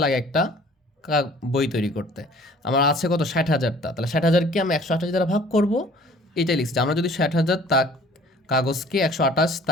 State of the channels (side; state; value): both; normal; correlation 0.52